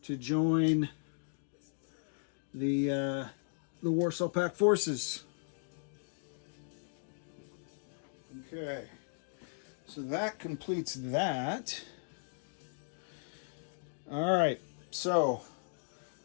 to join the Warsaw Pact forces. Okay, so that completes that. All right, so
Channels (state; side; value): silent; right; digital silence